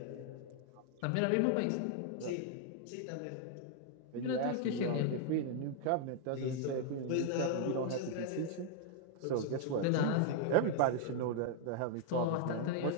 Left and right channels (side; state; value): both; different; correlation 0.00